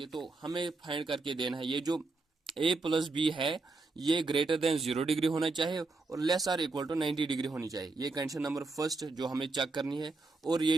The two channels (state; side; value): quieter; left; 3.5 dB